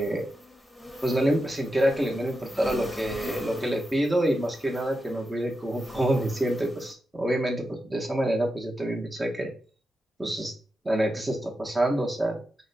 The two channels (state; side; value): normal; both; correlation 0.88